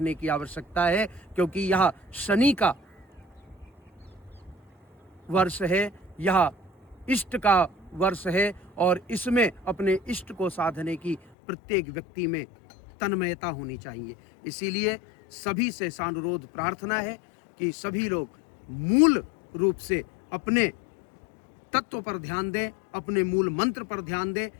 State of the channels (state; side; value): drops out; right; at 11.2 s